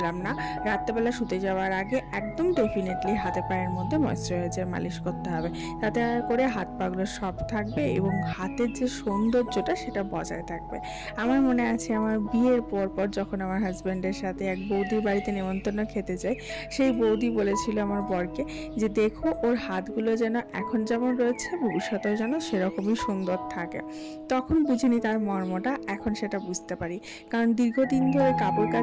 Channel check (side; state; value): both; identical; correlation 1.00